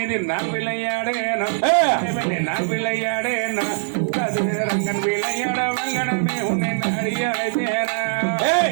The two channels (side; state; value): left; silent; 65 dB below the other